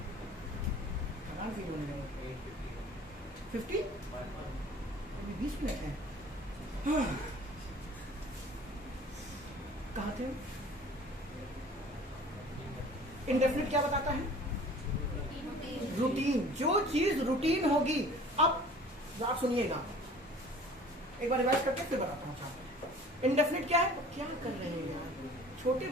थकान फील होने लगे। 50 अभी 20 मिनट है। कहाँ थे? इंडेफिनिट क्या बताता है? रूटीन। जो चीज रूटीन होगी, अब आप सुनिएगा, एक बार रिवाइज करके फिर बताता हूँ। इंडेफिनिट क्या है? क्या कर रहे हैं यार, छोटे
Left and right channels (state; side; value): normal; both; correlation 0.47